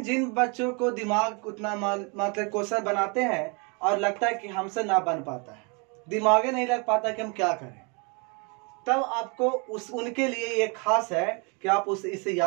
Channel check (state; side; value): quieter; left; 32.9 dB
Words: जिन बच्चों को दिमाग उतना मतलब क्वेश्चन बनाते हैं और लगता है कि हमसे ना बन पाता है, दिमाग नहीं लग पाता कि हम क्या करें, तब आपको उनके लिए ये खास है कि आप इसे